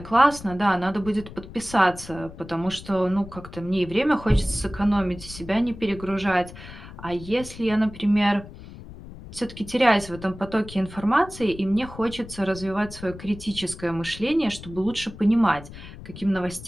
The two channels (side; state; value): left; noise; rumble, 15 dB below the sound